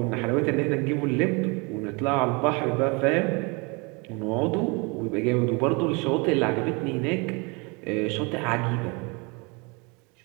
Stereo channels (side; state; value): left; quieter; 29.6 dB